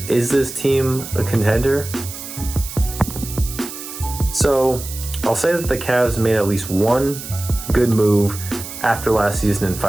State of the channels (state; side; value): noise; right; hiss, 11 dB below the sound